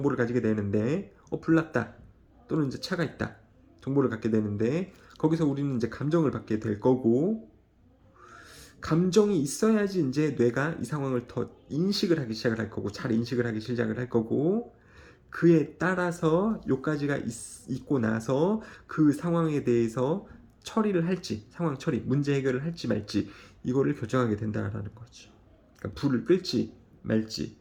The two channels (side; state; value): both; identical; correlation 1.00